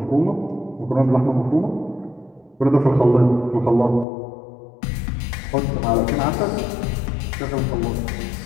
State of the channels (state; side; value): drops out; right; at 4.0 s